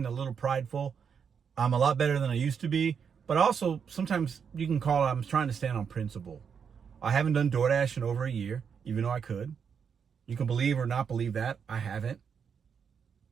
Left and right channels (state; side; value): quieter; left; 6.8 dB